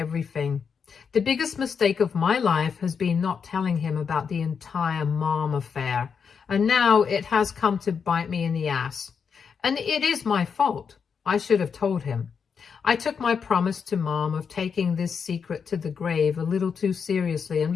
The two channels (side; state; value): right; quieter; 6.3 dB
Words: The biggest mistake of my life has been not telling him about the entire Mom affair, and now it has come to bite me in the ass. And it is my fault. I should have told him. I took my promise to Mom of taking this secret to the grave a little too seriously, and